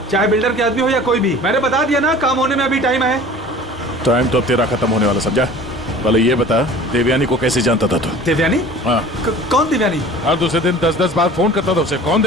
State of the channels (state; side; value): normal; both; correlation 0.44